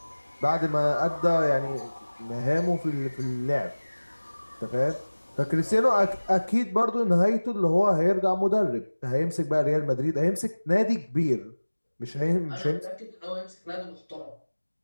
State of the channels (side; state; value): both; inverted; correlation -1.00